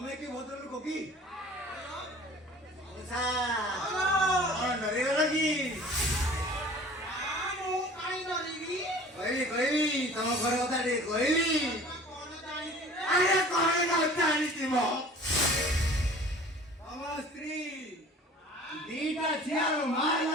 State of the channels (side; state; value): both; normal; correlation 0.46